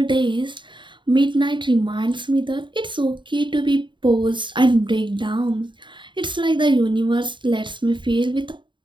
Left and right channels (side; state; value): left; late; 0.23 ms